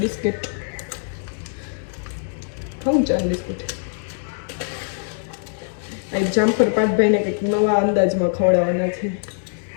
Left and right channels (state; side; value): silent; right; 64 dB below the other